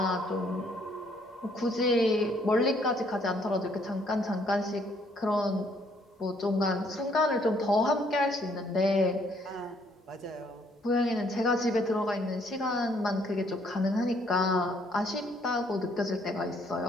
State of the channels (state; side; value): normal; both; correlation 0.66